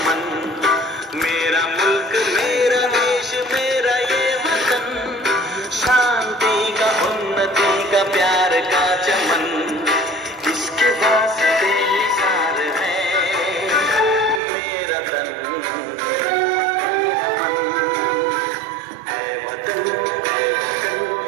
मेरा मुल्क मेरा देश मेरा ये वतन शांति का उन्नति का प्यार का चमन। इसके वास्ते निसार है मेरा तन है वतन है वतन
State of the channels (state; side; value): drops out; left; at 14.4 s